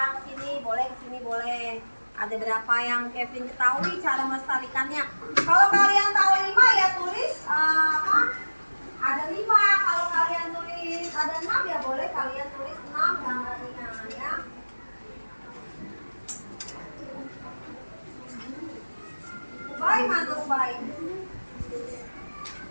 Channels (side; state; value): both; inverted; correlation -1.00